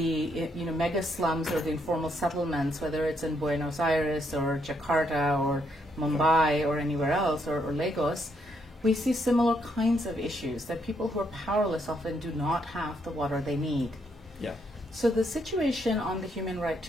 mega slums or the informal settlements, whether it's in Buenos Aires or Jakarta or Mumbai or anywhere else, or Lagos, we see similar kinds of issues, that people who are powerless often do not have the water they need. Yeah. So the situation on the human right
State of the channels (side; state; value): both; normal; correlation 0.75